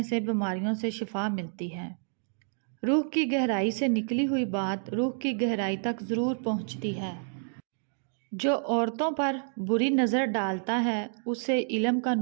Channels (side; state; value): left; silent; 58 dB below the other